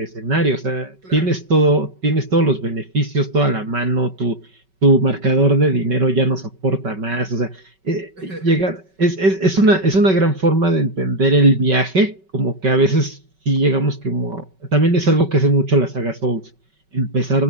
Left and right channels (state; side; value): late; left; 5.3 ms